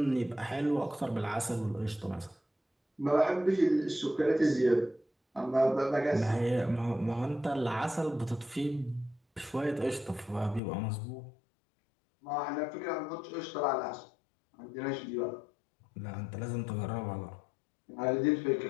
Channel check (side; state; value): right; drops out; at 10.6 s